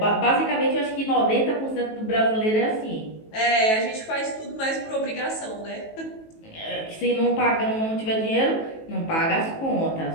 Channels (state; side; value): late; right; 18 ms